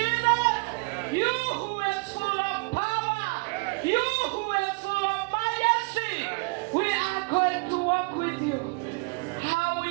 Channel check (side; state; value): left; quieter; 29.4 dB